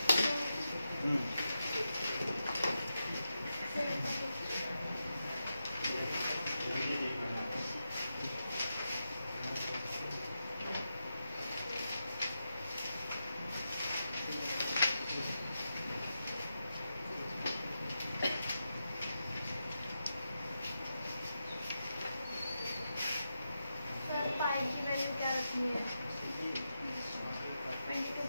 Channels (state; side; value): inverted; both; correlation -0.88